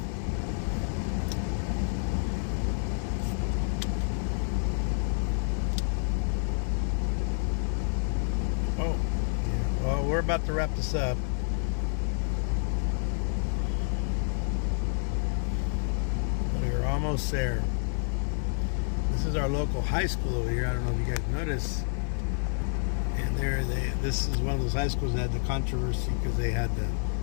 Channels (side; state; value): right; silent; digital silence